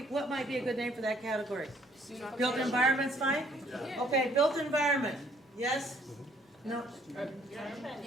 might be a good name for that category? Built environment's fine? Yeah. Okay, built environment. Yes? No?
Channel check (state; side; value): normal; both; correlation 0.63